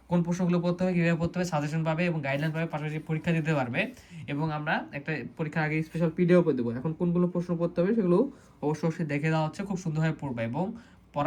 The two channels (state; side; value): identical; both; correlation 1.00